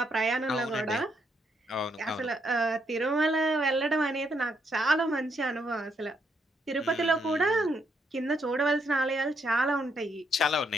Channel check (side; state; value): both; normal; correlation 0.76